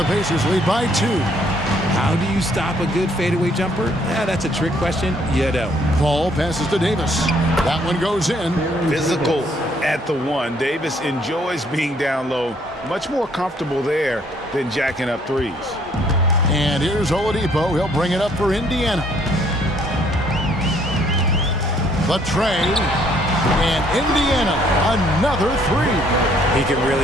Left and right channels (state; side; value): normal; both; correlation 0.65